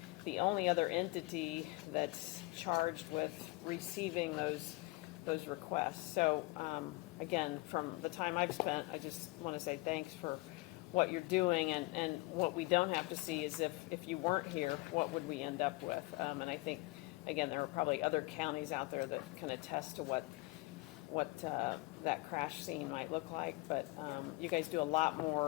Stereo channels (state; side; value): quieter; right; 23.1 dB